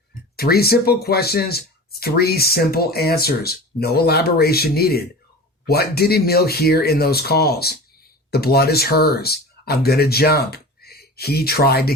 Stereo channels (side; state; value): both; normal; correlation 0.34